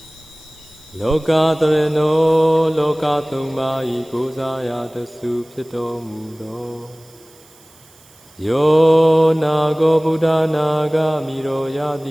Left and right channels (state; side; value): noise; right; hiss, 27 dB below the sound